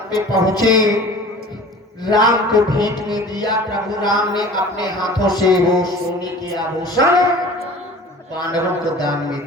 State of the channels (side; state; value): both; normal; correlation 0.43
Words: पे पहुंचे, राम को भेंट में दिया। प्रभु राम ने अपने हाथों से वो सोने के आभूषण बानरों को दान में